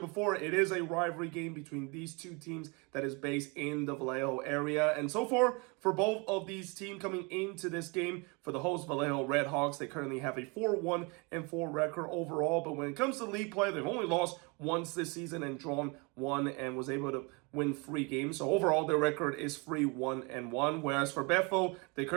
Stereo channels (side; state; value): left; quieter; 29.9 dB